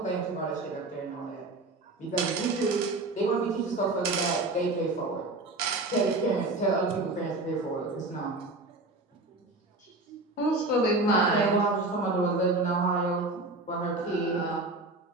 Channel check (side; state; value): left; quieter; 3.0 dB